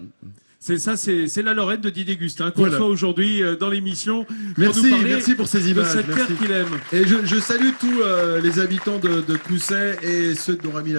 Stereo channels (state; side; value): inverted; both; correlation -1.00